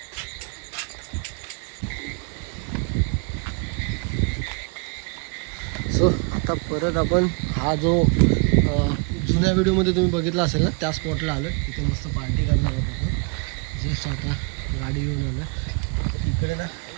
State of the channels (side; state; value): left; quieter; 35.4 dB